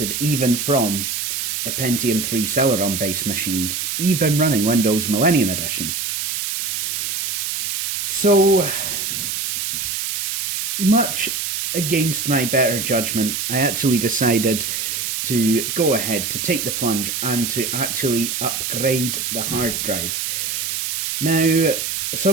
even from a Pentium 3 Celeron based machine, even running Windows Millennium Edition. So, much against my better judgment, I actually decided to go ahead to take the plunge and to actually upgrade the hard drive. Now,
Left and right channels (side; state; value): right; noise; hiss, 2 dB below the sound